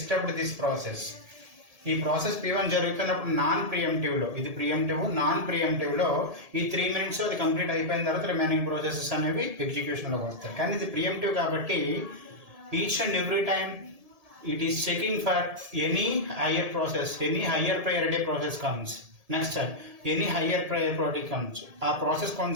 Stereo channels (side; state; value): left; late; 1.7 ms